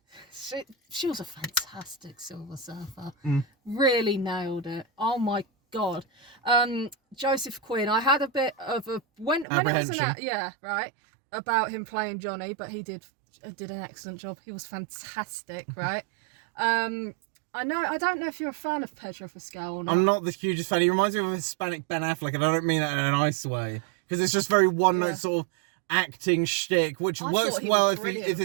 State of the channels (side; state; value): left; drops out; at 9.5 s